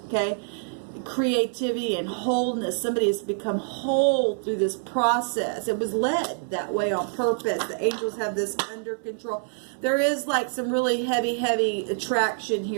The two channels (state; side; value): silent; left; 61 dB below the other